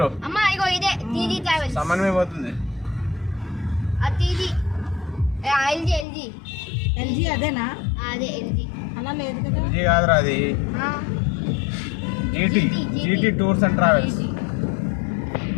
సమన్వయ పోతుంది ఎల్జీ అదేనా అలా లేదు కదా ఎల్జీ కాదురా అది GT tours and travels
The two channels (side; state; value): right; drops out; at 6.1 s